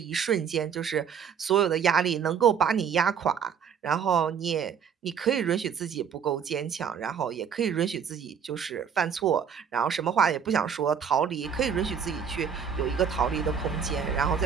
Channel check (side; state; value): left; quieter; 7.3 dB